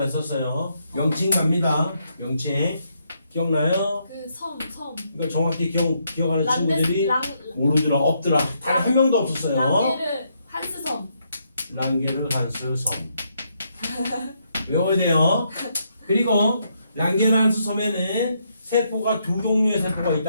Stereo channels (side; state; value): both; inverted; correlation -0.76